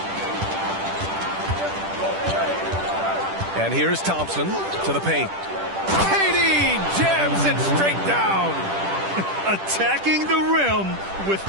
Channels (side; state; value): left; late; 10 ms